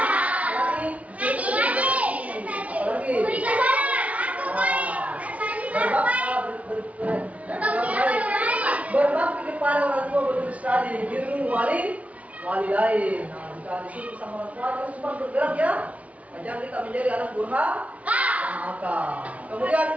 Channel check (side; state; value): left; late; 0.067 ms